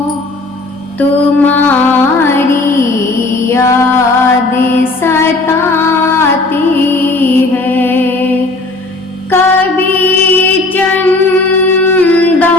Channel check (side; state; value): right; quieter; 3.1 dB